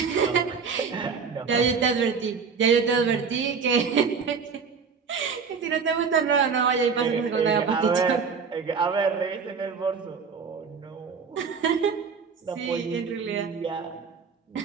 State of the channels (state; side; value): quieter; left; 5.7 dB